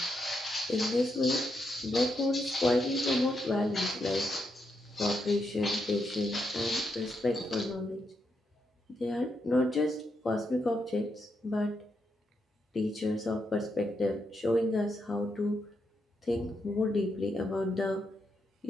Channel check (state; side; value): normal; both; correlation 0.81